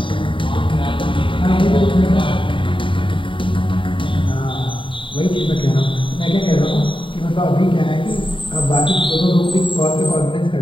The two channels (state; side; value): late; right; 0.25 ms